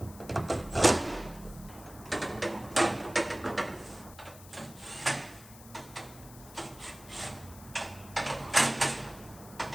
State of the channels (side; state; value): left; noise; hiss, 19 dB below the sound